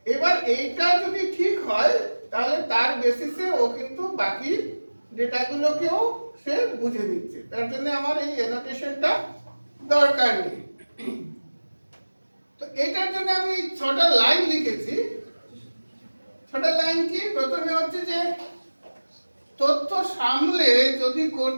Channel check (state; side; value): inverted; both; correlation -1.00